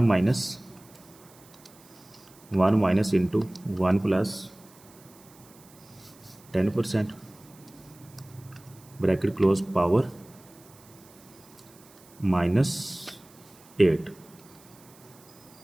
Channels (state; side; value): noise; right; hiss, 25 dB below the sound